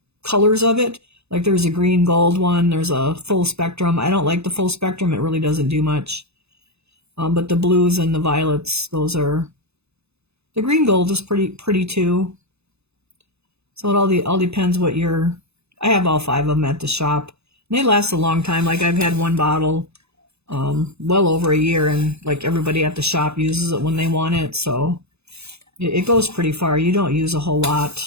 colors of it. Like there's a green gold one, there's a full spectrum. I don't like the full spectrum, it really doesn't do much. But the blues and the violets, those are, the green gold is pretty too. So it all depends what I have all 5 of them at the shop. And they last a long time. Like I've had one bottle well over a year, and like everybody at the shop uses it when they want it. So it goes pretty far. You don't use a whole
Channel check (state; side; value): late; left; 0.80 ms